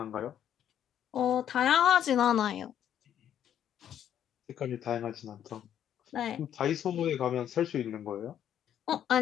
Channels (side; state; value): right; quieter; 10.1 dB